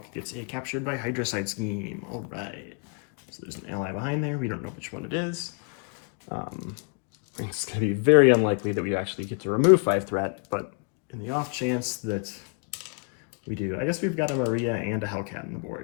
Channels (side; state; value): right; quieter; 39.9 dB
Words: gets a captured by Hydrocide scheme. All right. So there's an ally behind there. We don't know which one it is. It's going to be very unlikely that we actually get to remove 5 threat, but in the off chance that we do, I guess we've got a Maria and a Hellcat on the